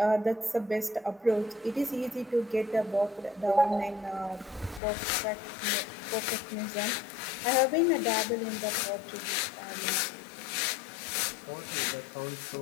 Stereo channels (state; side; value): drops out; right; at 4.8 s